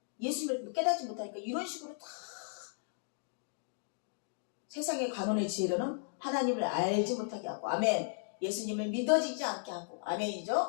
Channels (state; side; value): silent; right; digital silence